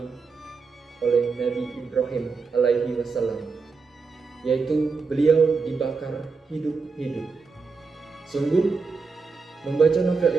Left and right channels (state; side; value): quieter; left; 4.7 dB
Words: oleh Nabi Ibrahim alaihi wasallam, yaitu beliau dibakar hidup-hidup. Sungguh, membaca novel